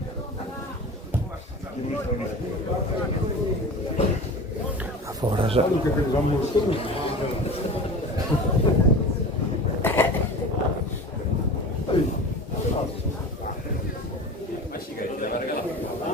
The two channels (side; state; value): both; normal; correlation 0.34